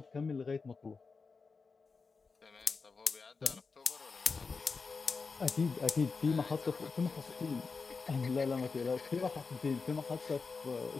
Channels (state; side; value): quieter; right; 4.6 dB